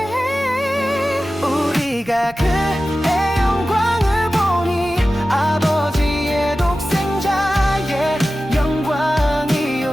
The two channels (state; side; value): normal; both; correlation 0.95